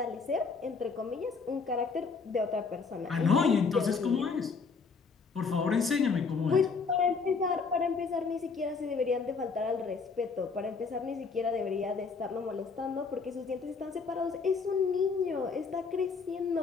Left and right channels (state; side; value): quieter; right; 4.9 dB